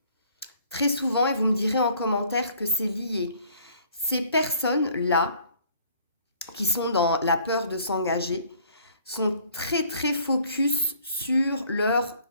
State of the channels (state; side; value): inverted; both; correlation -0.59